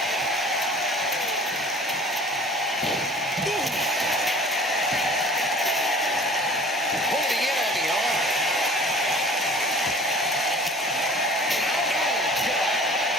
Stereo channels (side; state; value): both; normal; correlation 0.46